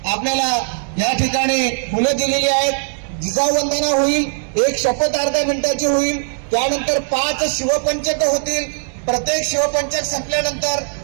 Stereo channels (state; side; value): silent; left; digital silence